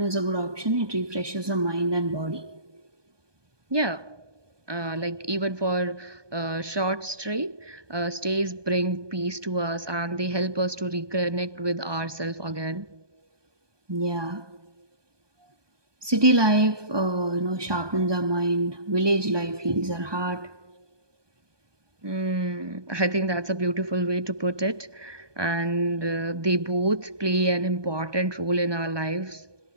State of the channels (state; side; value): late; left; 1.2 ms